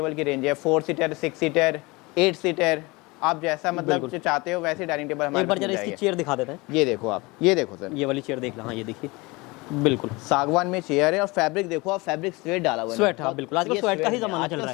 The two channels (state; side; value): quieter; right; 24.4 dB